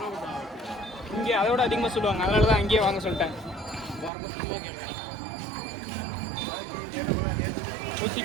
இங்கே அதோட அதிகமாக சொல்லுவாங்க, அதனால தான் அங்கேயே வாங்க சொல்லிட்டேன். ஊசி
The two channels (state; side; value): drops out; left; at 4.1 s